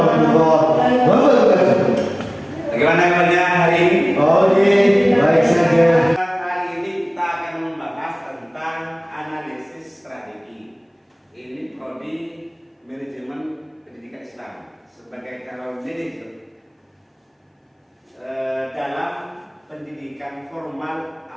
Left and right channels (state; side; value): identical; both; correlation 1.00